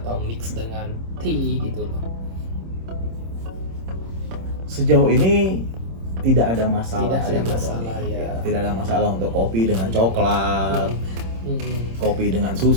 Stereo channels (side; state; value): left; late; 26 ms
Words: mix dengan tea gitu loh? Sejauh ini tidak ada masalah. Tidak ada sih, masalah, Tony. ya. Tidak ada masalah untuk kopi dengan coklat, kopi dengan